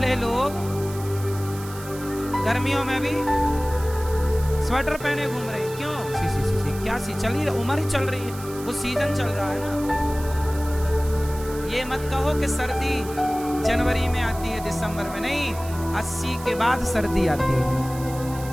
लोग गर्मियों में भी स्वेटर पहने घूम रहे हैं, क्यों? 81 चल ही, उम्र ही चल रही है, वो सीजन चल रहा है ना। ये मत कहो कि सर्दी जनवरी में आती है, दिसंबर में नहीं, 80 के बाद सर्दी आती है।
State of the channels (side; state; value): right; noise; hiss, 16 dB below the sound